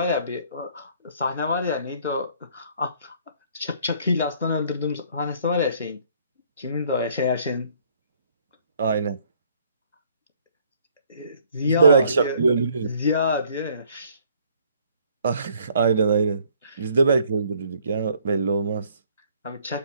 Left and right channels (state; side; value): inverted; both; correlation -0.61